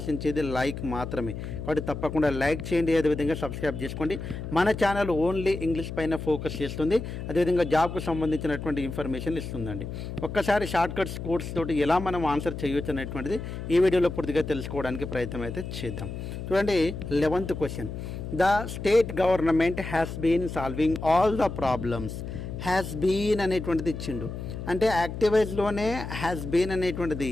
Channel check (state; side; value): noise; left; hum, 7 dB below the sound